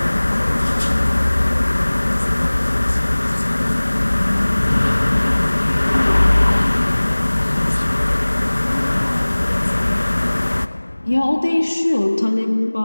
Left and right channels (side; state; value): both; inverted; correlation -1.00